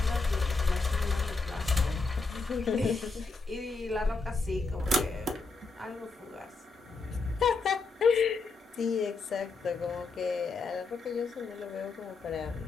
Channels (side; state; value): right; quieter; 4.0 dB